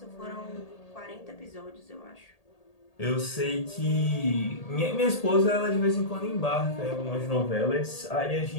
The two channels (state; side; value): late; right; 1.8 ms